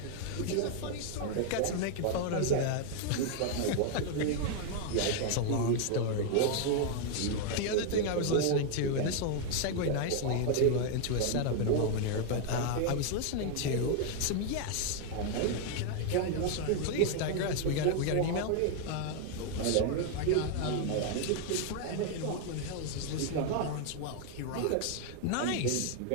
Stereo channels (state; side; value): different; both; correlation 0.00